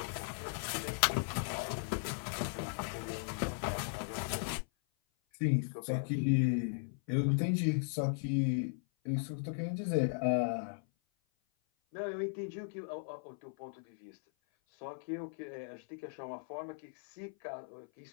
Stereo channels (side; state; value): right; silent; 53 dB below the other